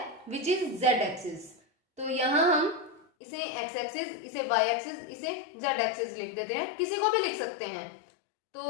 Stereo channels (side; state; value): right; drops out; at 3.1 s